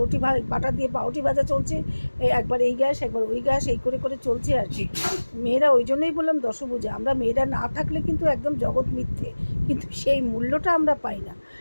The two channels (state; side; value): inverted; both; correlation -1.00